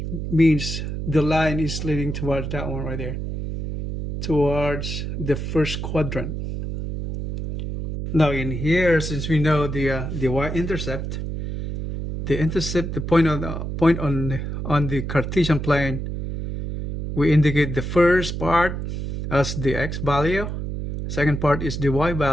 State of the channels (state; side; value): noise; right; hum, 4 dB below the sound